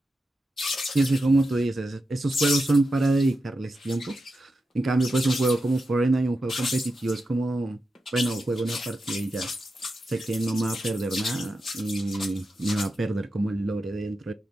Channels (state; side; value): normal; both; correlation 0.89